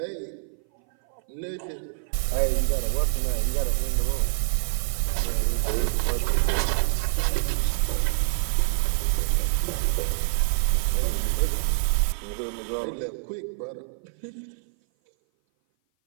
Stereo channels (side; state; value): left; silent; 57 dB below the other